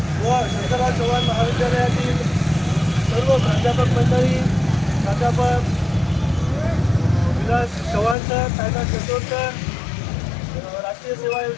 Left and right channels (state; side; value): drops out; right; at 8.2 s